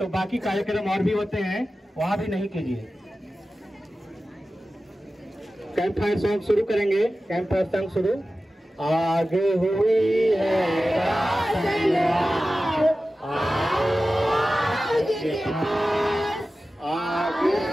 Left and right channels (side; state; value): both; normal; correlation 0.95